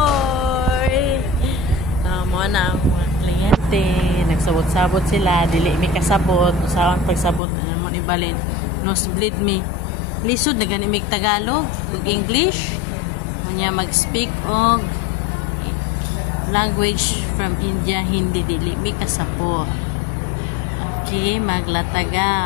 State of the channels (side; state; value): right; drops out; at 7.4 s